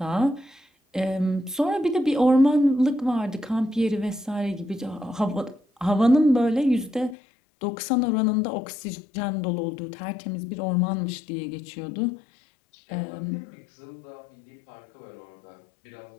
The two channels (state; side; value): drops out; right; at 7.2 s